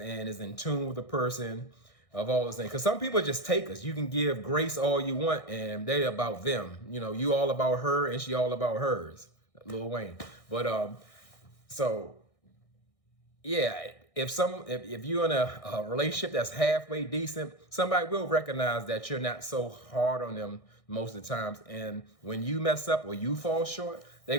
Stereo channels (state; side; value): late; right; 1.6 ms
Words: is in tune with the person of all those things. Because some people just take us. You can give grace all you want and they about them. You all about her and she all about hers. Lil Wayne. But so yeah, if you're in a relationship that's halfway decent, somebody will recognize that you're not so hard on them most of the times. And when you mess up or you fall short, they're